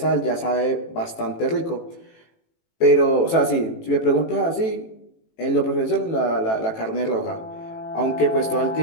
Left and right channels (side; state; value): right; late; 18 ms